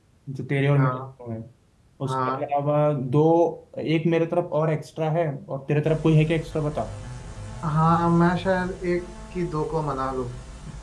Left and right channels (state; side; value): identical; both; correlation 1.00